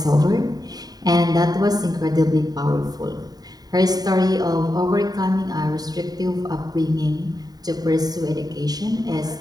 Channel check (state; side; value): late; left; 0.19 ms